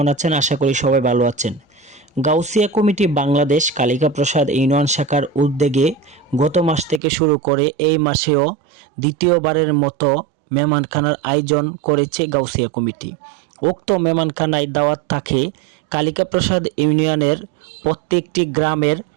আছেন? আশা করি সবাই ভালো আছেন। গাউসিয়া কমিটি বাংলাদেশ কালিকা প্রসাদ ইউনিয়ন শাখার উদ্যোগে গত মাস থেকে শুরু করে এই মাসেও দ্বিতীয়বারের মতো মেহমানখানার আয়োজন করেছে গাউসিয়া কমিটি। উক্ত মেহমানখানায় দাওয়াত থাকে কালিকা প্রসাদ ইউনিয়নের প্রত্যেকটি গ্রামের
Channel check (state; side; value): drops out; left; at 7.0 s